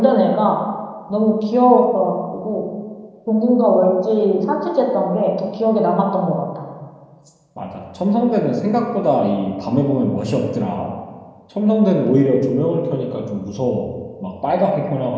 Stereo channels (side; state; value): both; identical; correlation 1.00